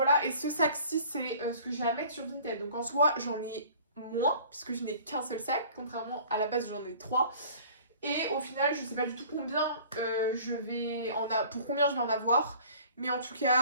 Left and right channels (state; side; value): inverted; both; correlation -0.49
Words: et ce sac-ci, c'est ce que j'ai à mettre sur Vinted. Donc en soi, j'en ai moins, puisque je n'ai qu'un seul sac, contrairement à la base, j'en ai 3. Et au final, je sais pas du tout combien pour combien je vais en avoir. Mais en tout